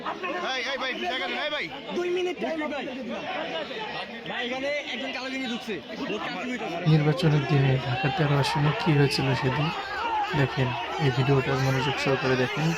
নির্বাচনের দিনে ঢাকা 13 আসনে কি হয়েছিল সেদিন দেখেন। এই ভিডিওটা মনোযোগ সহকারে দেখেন,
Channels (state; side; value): identical; both; correlation 1.00